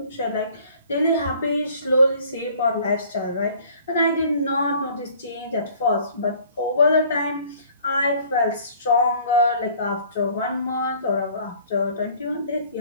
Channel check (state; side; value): inverted; both; correlation -0.54